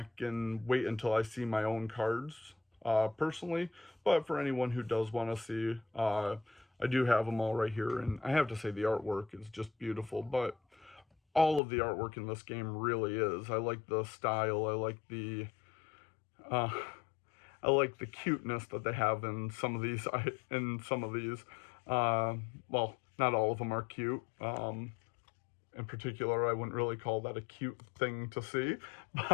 and wait until I see my own cards personally. But for anyone who does want to see, I do have them all right here, and I have to say the artwork is just beautiful, but all of the artwork in this game really is. I like the style, I like the cuteness that they have in some of these, well, not all of them are cute. In particular, I wouldn't really call that a cute thing to see,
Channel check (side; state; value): right; drops out; at 11.6 s